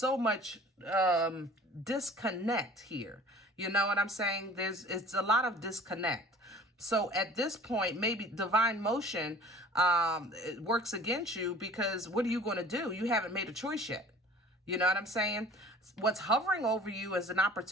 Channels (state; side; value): normal; both; correlation 0.46